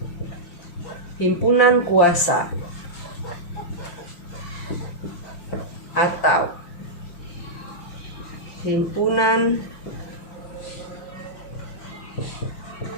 himpunan kuasa atau himpunan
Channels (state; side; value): late; right; 5.7 ms